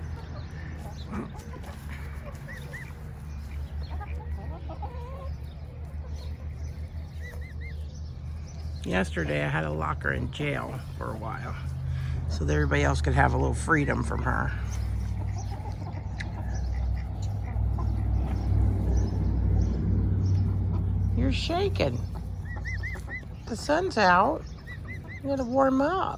Yesterday I had to lock her in jail for a while so that everybody else could have a little freedom from her. You're shaking. The sun's out. You gotta warm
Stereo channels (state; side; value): identical; both; correlation 1.00